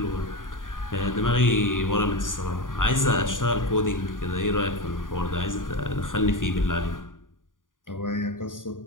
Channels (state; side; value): late; right; 0.89 ms